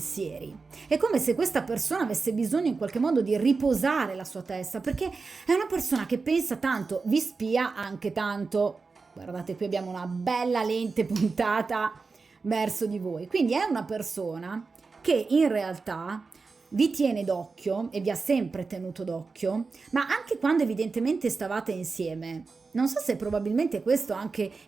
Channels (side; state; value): left; quieter; 4.4 dB